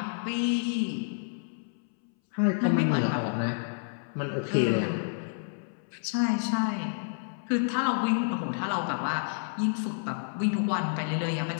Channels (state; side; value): silent; right; 58 dB below the other